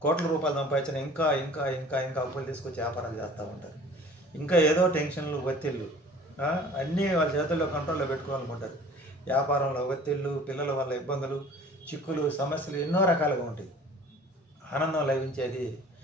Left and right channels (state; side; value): normal; both; correlation 0.48